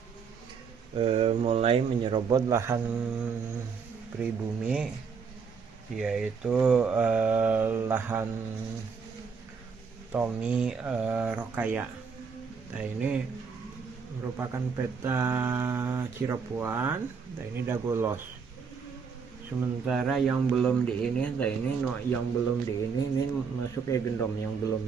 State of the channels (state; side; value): quieter; left; 5.8 dB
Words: mulai menyerobot lahan pribumi, yaitu lahan Tommy Rokaya. Nah, ini merupakan peta Cirebon. Nah, ini Dagolos. Sementara yang belum di ini, nah ini yang belum di ini masuk ke Gendom, yang